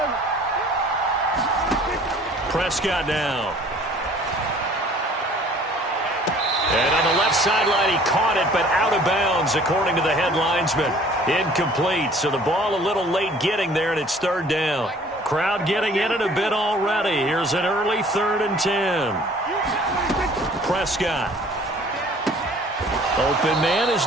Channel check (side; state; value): both; normal; correlation 0.52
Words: Prescott now. And on the left sideline, he caught it, but out of bounds, according to the head linesman. Incomplete, so the ball a little late getting there, and it's 3rd down. Crowd getting in it a bit already. Here's an early 3rd and 10. Prescott. Open man is